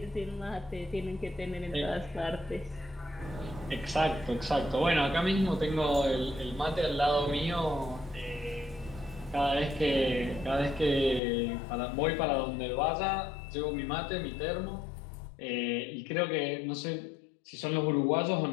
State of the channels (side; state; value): right; drops out; at 11.2 s